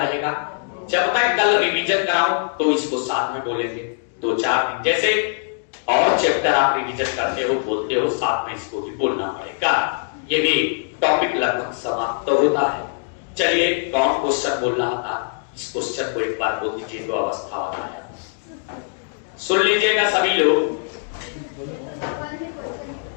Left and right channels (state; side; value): silent; right; digital silence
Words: जब मैं कल रिवीजन कराऊं तो इसको साथ में बोलेंगे 2-4 दिन। जैसे और चैप्टर आप रिवीजन करते हो, बोलते हो, साथ में इसको भी बोलना पड़ेगा। ये भी टॉपिक लगभग समाप्त तो होता है। चलिए, कौन क्वेश्चन बोल रहा था? इस क्वेश्चन को एक बार बोल दीजिए। तो अवस्था वाला है, सुन लीजिएगा सभी लोग।